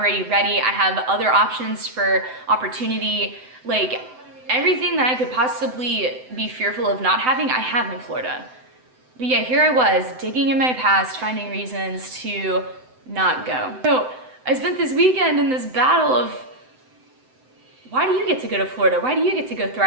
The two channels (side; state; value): left; late; 7.9 ms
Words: ready. I have other options for opportunity. Like, everything that I could possibly be fearful of not having, I have in Florida. But yeah, here I was digging in my past, finding reasons to not go. So I spent this weekend in this battle of, why do you get to go to Florida? Why do you get to go